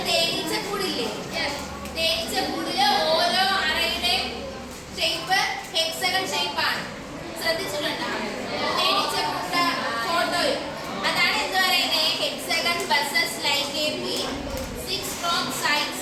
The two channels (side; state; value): both; identical; correlation 1.00